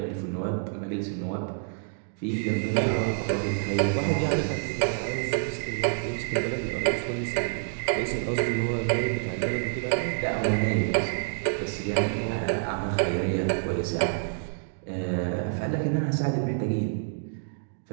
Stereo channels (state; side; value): silent; left; digital silence